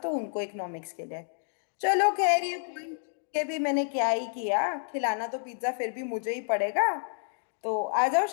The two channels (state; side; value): silent; right; digital silence